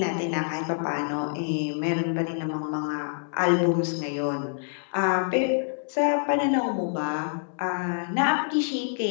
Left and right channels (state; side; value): silent; right; digital silence